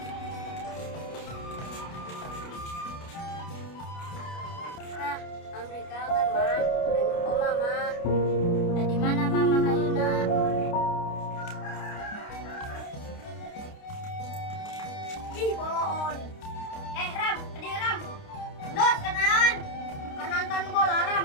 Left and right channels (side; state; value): right; late; 29 ms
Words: Nah, Amri kangen mah. Aing po mama. Di mana mama ayeuna? Ih, boloon. Ram, Ram. Dot, kenaon? Nonton bola Ram,